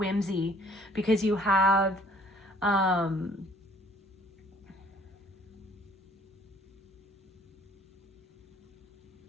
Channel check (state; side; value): normal; both; correlation 0.58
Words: whimsy, because you have,